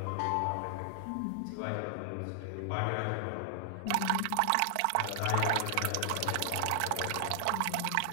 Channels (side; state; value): both; different; correlation 0.00